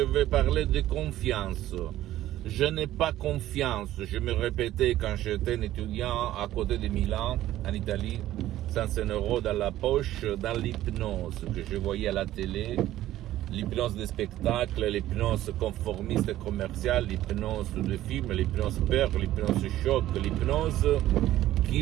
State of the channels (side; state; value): left; quieter; 14.1 dB